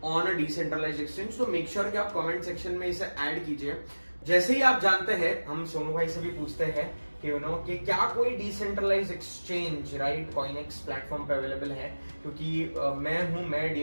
on a decentralized exchange, तो मेक श्योर कि आप कमेंट सेक्शन में इसे ऐड कीजिए। जैसे ही आप जानते हैं, हम सोनू भाई से भी पूछते हैं कि क्या कोई decentralized exchange, right, CoinEx platform पे अवेलेबल है, क्योंकि मैं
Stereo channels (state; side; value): inverted; both; correlation -1.00